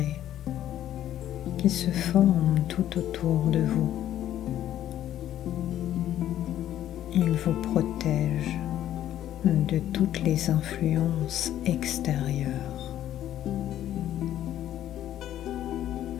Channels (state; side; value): quieter; right; 11.9 dB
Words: qui se forme tout autour de vous. Il vous protège de toutes les influences extérieures.